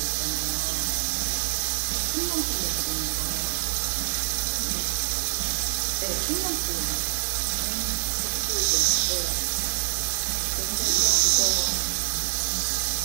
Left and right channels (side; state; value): left; silent; 61 dB below the other